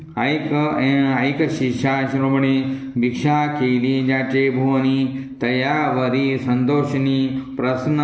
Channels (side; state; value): both; identical; correlation 1.00